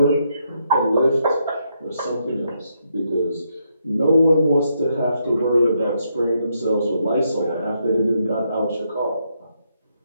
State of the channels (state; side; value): inverted; both; correlation -0.78